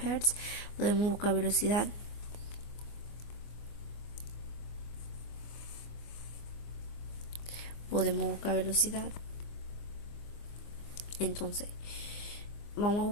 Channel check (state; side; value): late; right; 24 ms